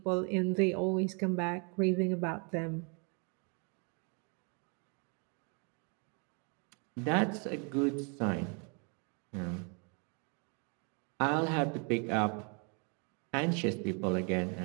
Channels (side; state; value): left; quieter; 36.0 dB